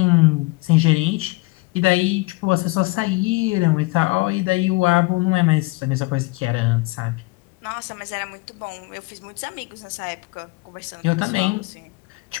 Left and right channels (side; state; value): right; quieter; 23.6 dB